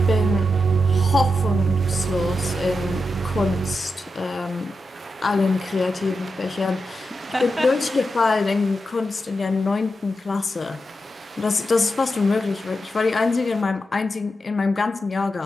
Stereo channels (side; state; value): both; normal; correlation 0.88